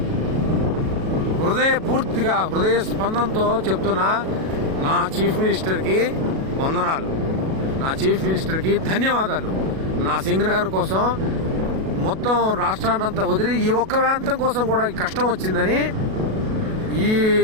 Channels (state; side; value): late; left; 37 ms